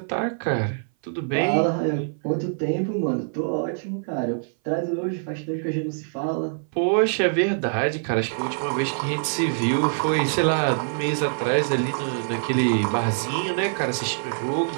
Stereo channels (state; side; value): silent; left; 59 dB below the other